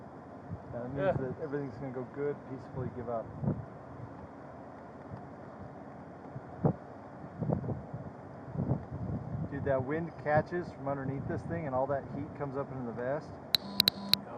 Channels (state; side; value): identical; both; correlation 1.00